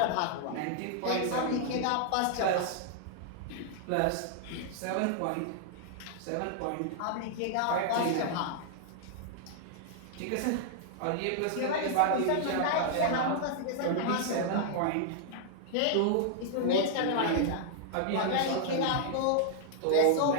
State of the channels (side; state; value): both; different; correlation -0.01